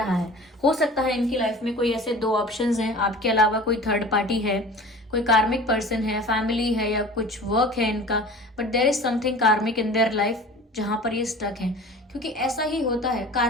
है। हो सकता है इनकी लाइफ में कोई ऐसे 2 ऑप्शंस हैं, आपके अलावा कोई थर्ड पार्टी है, कोई कार्मिक पर्सन है, फैमिली है, या कुछ वर्क है इनका, बट देयर इज समथिंग कार्मिक इन देयर लाइफ जहां पर ये स्टक हैं। क्योंकि ऐसा ही होता है,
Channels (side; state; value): both; normal; correlation 0.40